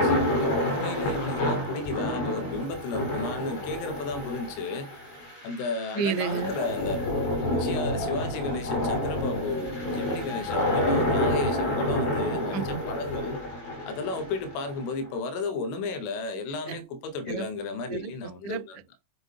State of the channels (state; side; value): late; right; 21 ms